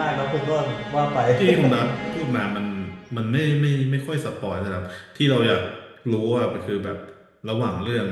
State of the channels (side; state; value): both; identical; correlation 1.00